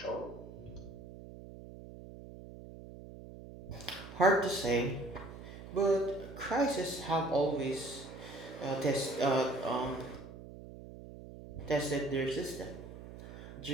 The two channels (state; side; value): noise; right; hum, 14 dB below the sound